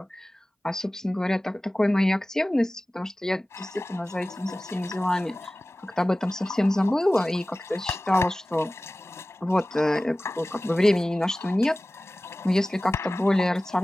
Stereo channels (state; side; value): normal; both; correlation 0.97